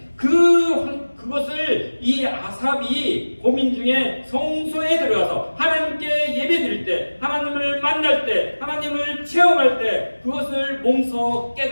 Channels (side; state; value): both; inverted; correlation -1.00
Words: 그것을 이 아삽이 고민 중에 성소에 들어가서 하나님께 예배드릴 때, 하나님을 만날 때, 하나님을 체험할 때 그것을 몸소